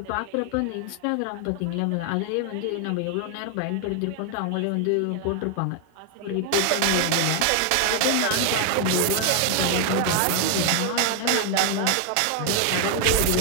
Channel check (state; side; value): different; both; correlation 0.01